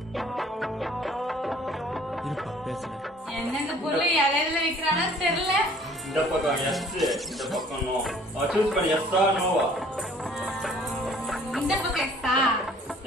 இருப்பா பேசுறேன். என்னங்க பொருளை இலையில வைக்கறானோ தெரியல. இந்த பக்கம் yes, இந்த பக்கம் no. சூஸ் பண்ணி yes or no. இந்த பக்கம் எக்ஸா?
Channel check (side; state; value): both; normal; correlation 0.54